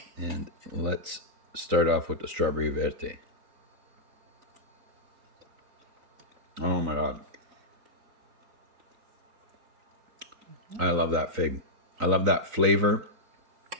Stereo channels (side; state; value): left; late; 3.9 ms